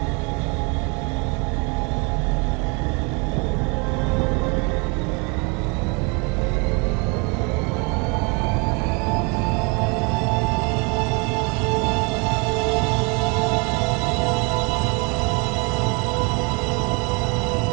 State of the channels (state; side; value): quieter; left; 31.1 dB